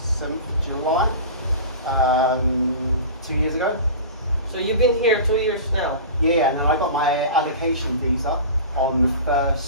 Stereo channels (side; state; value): both; inverted; correlation -0.35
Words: recent July, 2 years ago. So you've been here 2 years now? Yeah, and then I got my allocation visa on the